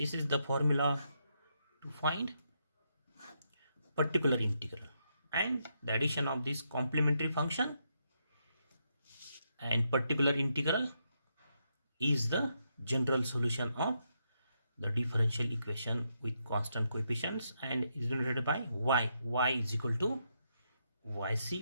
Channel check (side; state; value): both; inverted; correlation -0.80